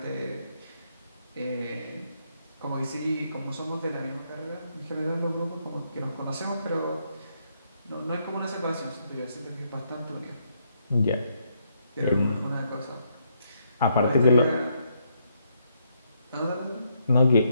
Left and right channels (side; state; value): both; inverted; correlation -0.75